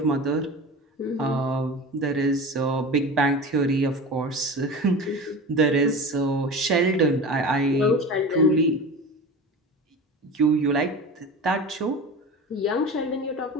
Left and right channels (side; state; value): both; normal; correlation 0.32